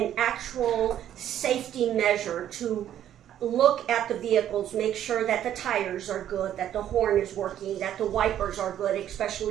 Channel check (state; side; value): quieter; left; 11.0 dB